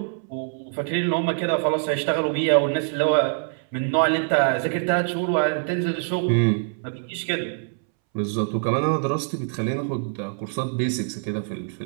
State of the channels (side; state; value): left; silent; 62 dB below the other